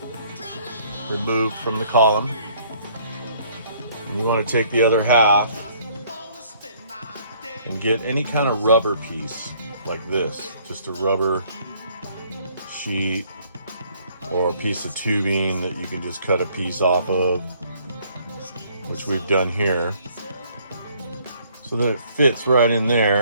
removed from the column. And you want to take the other half and get any kind of rubber piece like this, just a rubber sheet or a piece of tubing that you can just cut a piece off of, which we've done here, so that it fits right in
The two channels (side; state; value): both; inverted; correlation -0.62